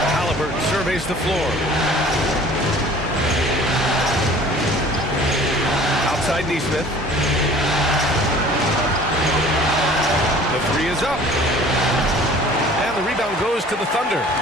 Halliburton surveys the floor. Outside Nesmith. The 3 is up. And the rebound goes to the Thunder.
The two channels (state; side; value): normal; both; correlation 0.48